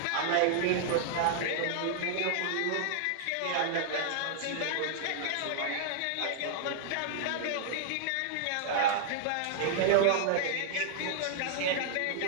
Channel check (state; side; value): different; both; correlation -0.01